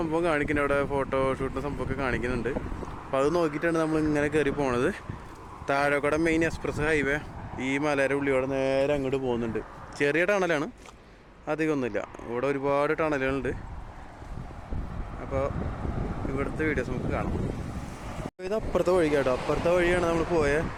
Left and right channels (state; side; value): identical; both; correlation 1.00